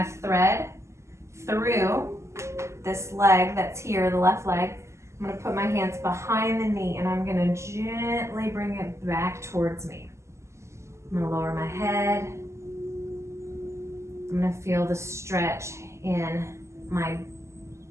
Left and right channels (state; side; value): late; left; 0.13 ms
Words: thread through this leg that's here, the left leg. I'm going to put my hands behind the knee and I'm going to gently bring it back towards me. I'm going to lower my head. I'm going to feel the stretch in my